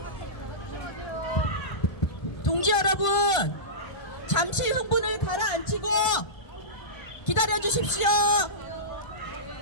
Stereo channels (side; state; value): right; late; 1.5 ms